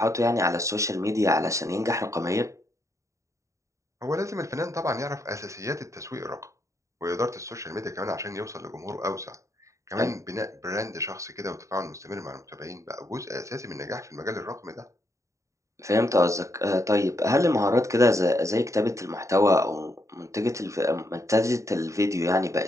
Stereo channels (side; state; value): left; late; 0.15 ms